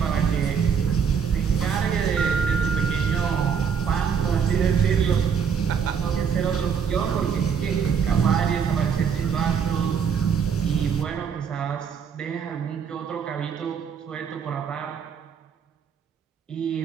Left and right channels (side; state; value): left; quieter; 6.9 dB